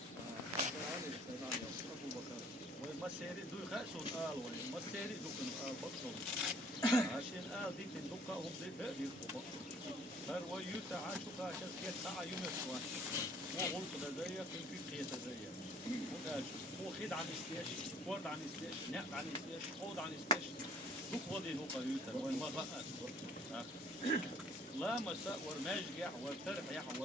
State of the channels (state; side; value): normal; both; correlation 0.56